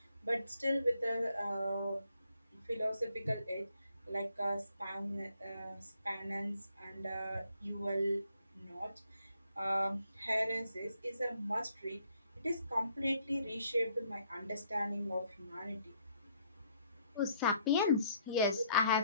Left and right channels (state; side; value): inverted; both; correlation -0.69